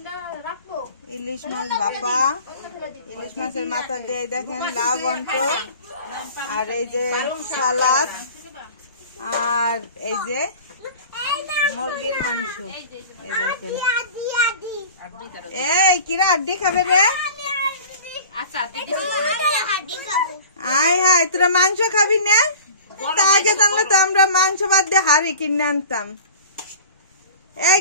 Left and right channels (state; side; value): inverted; both; correlation -0.41